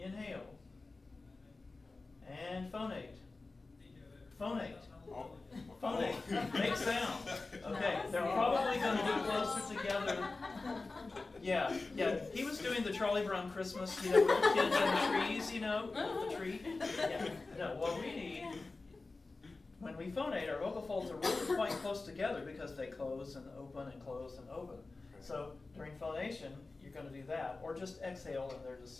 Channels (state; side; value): quieter; right; 3.6 dB